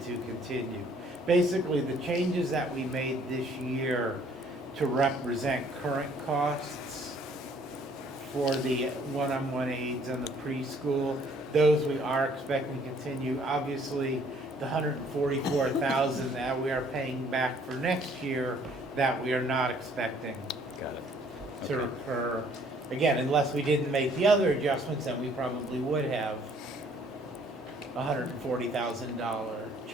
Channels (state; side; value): normal; both; correlation 0.61